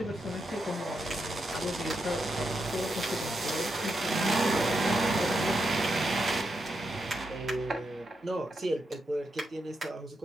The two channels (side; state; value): both; normal; correlation 0.84